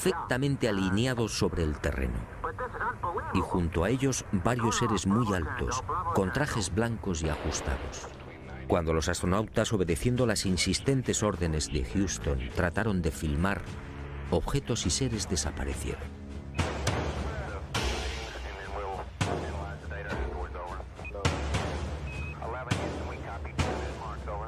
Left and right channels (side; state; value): both; identical; correlation 1.00